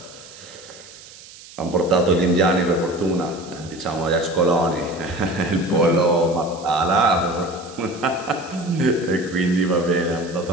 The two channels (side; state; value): right; noise; hiss, 19 dB below the sound